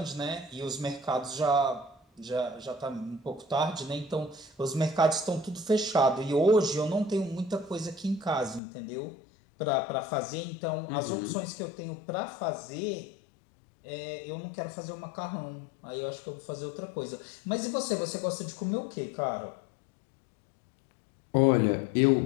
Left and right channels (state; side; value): drops out; right; at 8.6 s